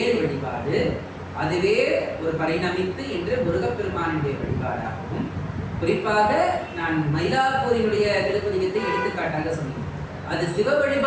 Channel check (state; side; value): identical; both; correlation 1.00